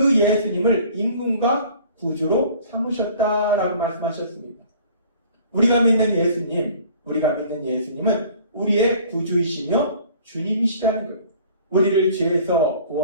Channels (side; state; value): both; inverted; correlation -0.51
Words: 예수님을 임금과 구주로 삼으셨다라고 말씀하셨습니다. 우리가 믿는 예수님은 우리의 구주이시며 주님이시다는 거예요. 우리를 죄에서